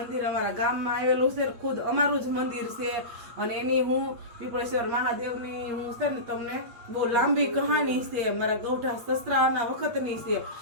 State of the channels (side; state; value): left; late; 8.4 ms